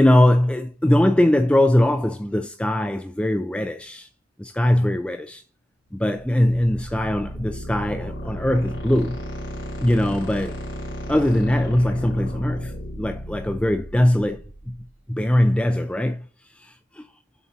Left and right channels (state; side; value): normal; both; correlation 0.96